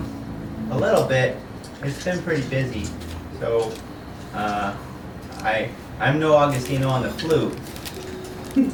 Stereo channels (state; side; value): identical; both; correlation 1.00